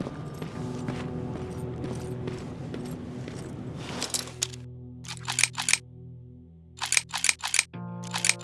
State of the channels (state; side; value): identical; both; correlation 1.00